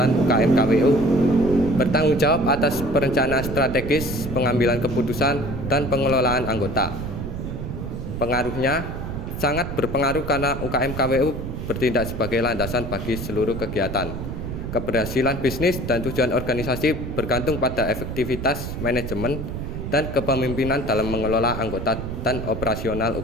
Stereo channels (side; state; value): right; noise; rumble, 6 dB below the sound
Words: UKM KWU, bertanggung jawab atas perencanaan strategis, pengambilan keputusan, dan pengelolaan anggota. Pengaruhnya sangat berpengaruh karena UKM KWU bertindak sebagai landasan bagi seluruh kegiatan. Keberhasilan bisnis dan tujuan organisasi bergantung pada efektivitas manajemen dan kepemimpinan dalam mengelola anggota dan operasional